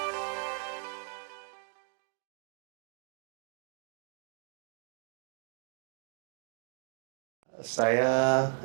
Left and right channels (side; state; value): left; silent; 54 dB below the other